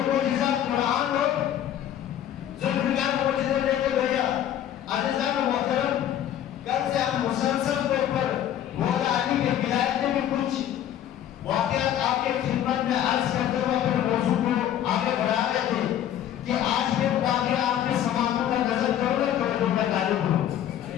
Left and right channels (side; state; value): right; quieter; 11.0 dB